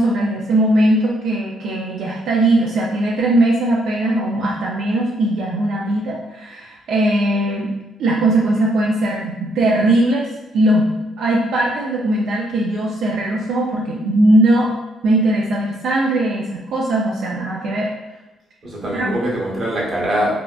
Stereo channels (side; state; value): both; normal; correlation 0.72